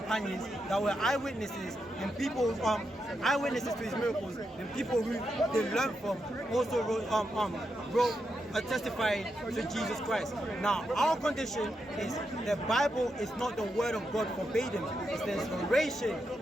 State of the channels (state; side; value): normal; both; correlation 0.84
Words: that were eyewitnesses and people eyewitnesses to his miracles and people who they learned from also wrote testifying to Jesus Christ. Now, our condition is the Bible is not the word of God verbatim. It's the inspiration